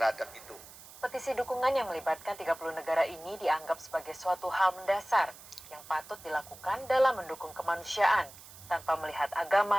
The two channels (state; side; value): noise; right; hiss, 18 dB below the sound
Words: itu. Petisi dukungan yang melibatkan 30 negara ini dianggap sebagai suatu hal mendasar yang patut dilakukan dalam mendukung kemanusiaan tanpa melihat